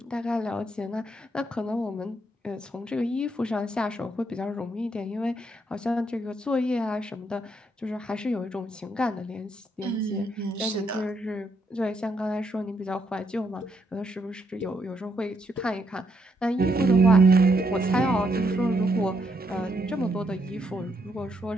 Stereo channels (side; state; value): both; normal; correlation 0.76